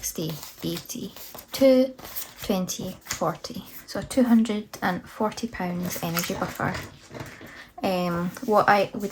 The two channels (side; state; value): both; identical; correlation 1.00